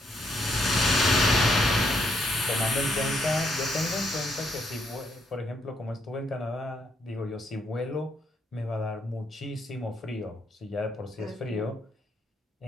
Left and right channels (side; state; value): both; normal; correlation 0.74